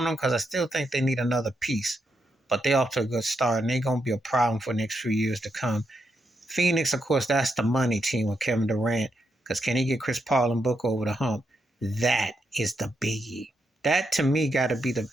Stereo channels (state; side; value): normal; both; correlation 0.81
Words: them because I still think they need another piece. But they're off to a good start, and they're going to be a problem for the next few years to come. Phoenix, of course, that's the money team with Kevin Durant, because can he get Chris Paul and Booker over the hump? That is the biggie. That, to me, got to be the